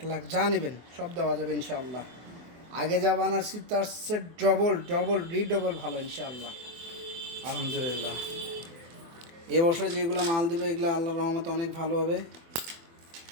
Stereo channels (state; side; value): late; left; 24 ms